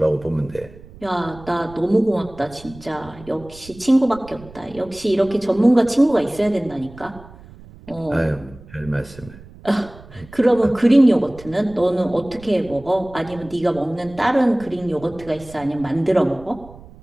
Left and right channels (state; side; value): noise; right; rumble, 20 dB below the sound